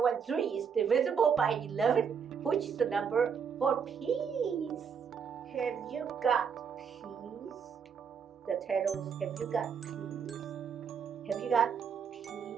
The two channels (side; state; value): left; quieter; 6.8 dB